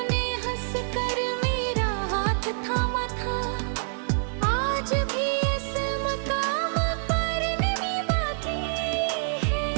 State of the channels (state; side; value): silent; left; 60 dB below the other